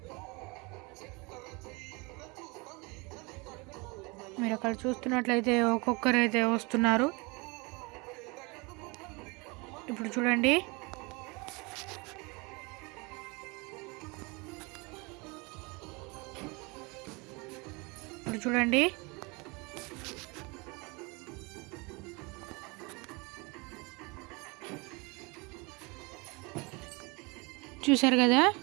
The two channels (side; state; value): left; quieter; 27.6 dB